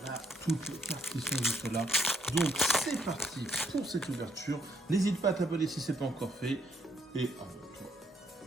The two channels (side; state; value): both; normal; correlation 0.71